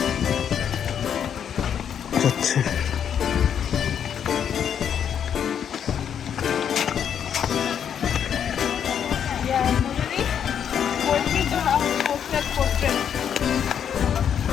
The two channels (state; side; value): quieter; right; 8.5 dB